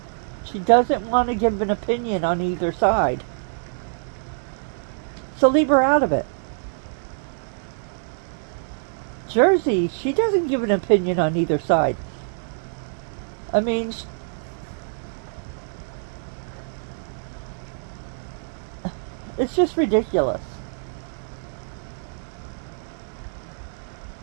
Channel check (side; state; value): left; silent; 60 dB below the other